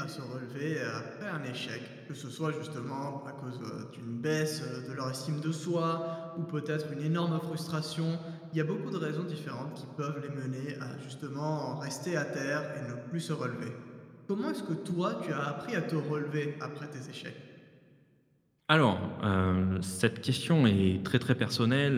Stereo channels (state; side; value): identical; both; correlation 1.00